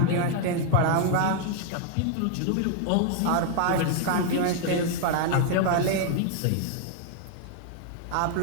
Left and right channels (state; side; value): different; both; correlation 0.00